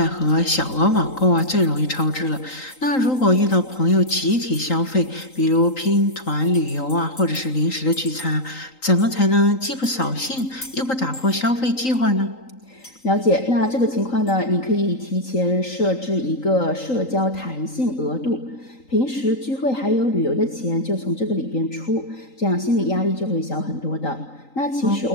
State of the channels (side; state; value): right; late; 3.8 ms